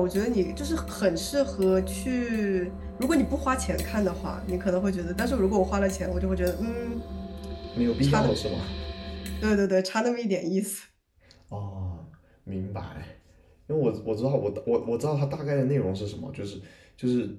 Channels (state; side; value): identical; both; correlation 1.00